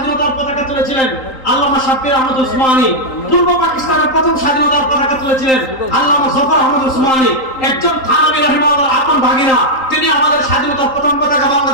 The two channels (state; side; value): late; right; 3.8 ms